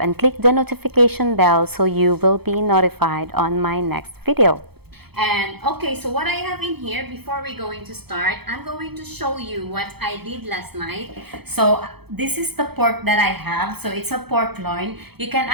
and click the notification bell so you will be notified on my next video. And okay, so what I have in here before we're going to start, I'm going to show you what I did last night. So this is the pork that I have. So it's a pork loin. You can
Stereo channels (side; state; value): left; late; 0.97 ms